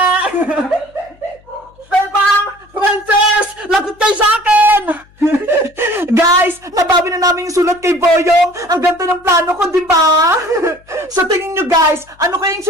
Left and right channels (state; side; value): noise; left; hum, 29 dB below the sound